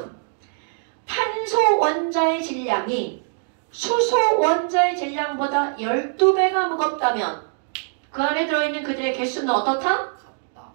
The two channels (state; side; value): silent; left; digital silence